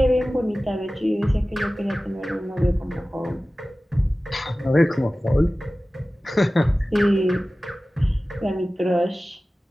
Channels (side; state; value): both; normal; correlation 0.96